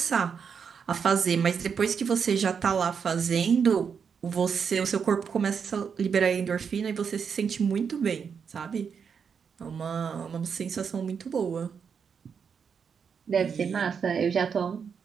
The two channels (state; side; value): quieter; left; 6.6 dB